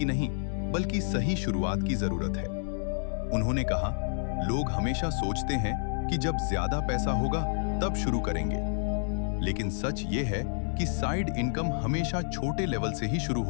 नहीं, बल्कि सही शुरुआत की जरूरत है। उन्होंने कहा, लोग हमेशा सोचते हैं कि जब ज्यादा पैसा होगा तब शुरू करेंगे, लेकिन सच ये है कि साइड इनकम हमेशा छोटे लेवल से ही शुरू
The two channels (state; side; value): silent; right; 58 dB below the other